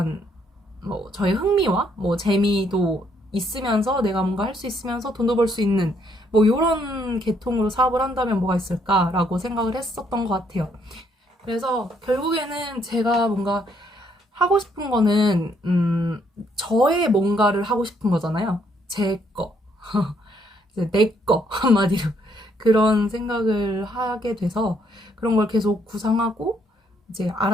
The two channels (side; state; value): both; normal; correlation 0.70